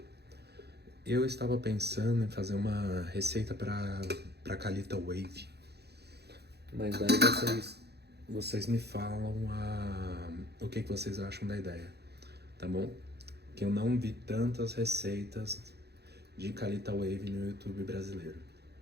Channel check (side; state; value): left; late; 0.48 ms